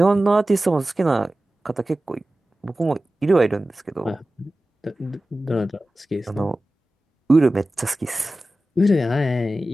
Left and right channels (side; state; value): both; normal; correlation 0.95